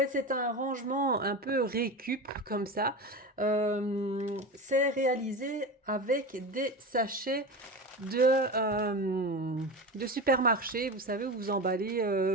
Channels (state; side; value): normal; both; correlation 0.26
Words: c'est un rangement un peu récup comme ça. C'est réalisé avec des sachets de, de supermarché, vous savez, où vous emballez